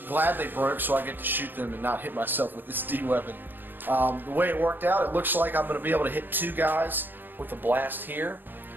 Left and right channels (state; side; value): late; left; 0.093 ms